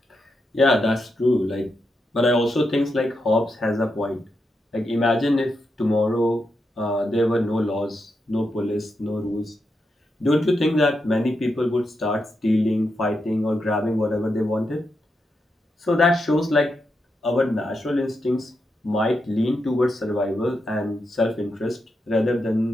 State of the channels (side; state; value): both; normal; correlation 0.85